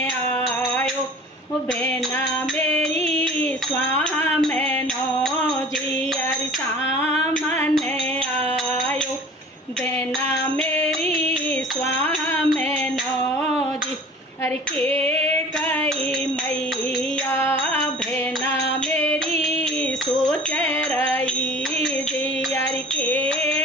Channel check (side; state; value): both; normal; correlation 0.45